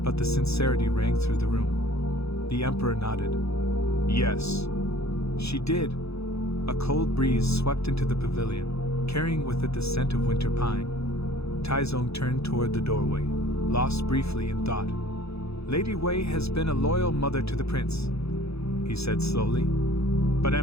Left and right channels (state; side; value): late; right; 0.78 ms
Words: but the sincerity rang through the room. The emperor nodded. "Yes, she did." A cold breeze swept into the pavilion, carrying with it the scent of winter pine. Taizong turned toward the doorway, lost briefly in thought. "Lady Wei has been a loyal mother to the prince," he said slowly. "But